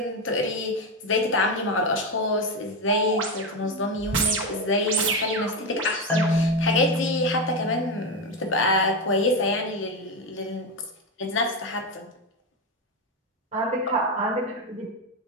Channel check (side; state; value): both; normal; correlation 0.12